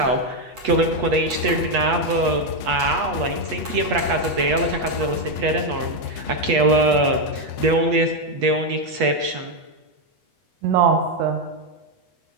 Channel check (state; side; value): late; left; 8.3 ms